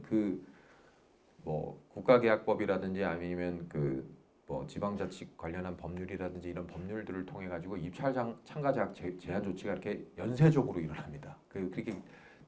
그 뭐 국가계약법이라든지 아니면 그 뭐 지방자치 관련한 법률이라든지 이런 법률들을 통해 가지고 입찰 참가 자격 제한 조치가 이렇게 연쇄적으로 일어납니다. 그렇게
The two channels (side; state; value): both; identical; correlation 1.00